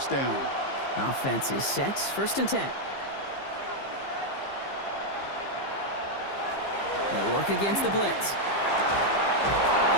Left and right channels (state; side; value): late; right; 15 ms